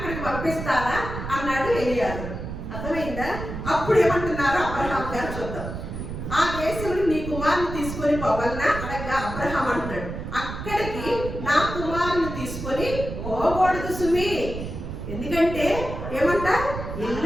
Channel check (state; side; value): noise; right; rumble, 7 dB below the sound